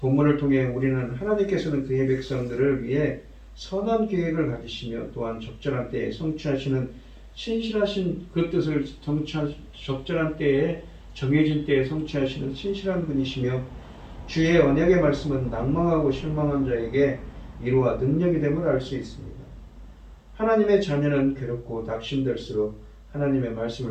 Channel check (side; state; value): both; identical; correlation 1.00